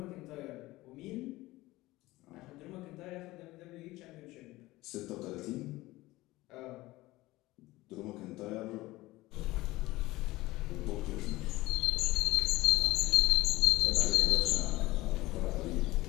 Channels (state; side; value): quieter; right; 18.9 dB